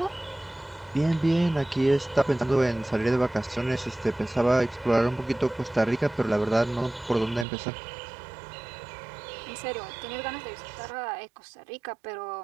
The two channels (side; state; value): left; drops out; at 7.5 s